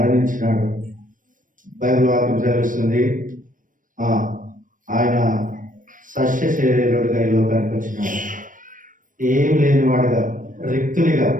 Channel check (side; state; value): left; late; 0.38 ms